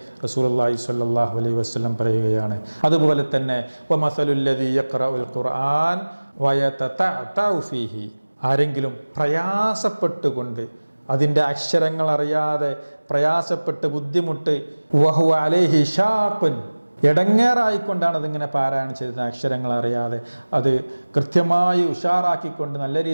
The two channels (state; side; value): inverted; both; correlation -1.00